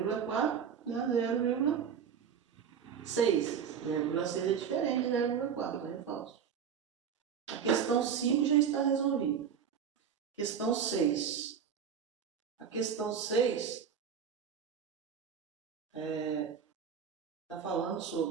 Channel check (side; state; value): left; quieter; 7.5 dB